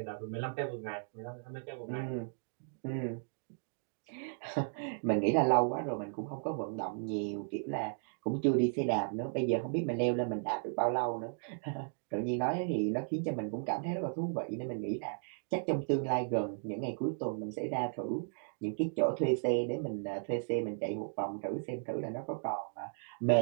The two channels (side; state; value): left; silent; digital silence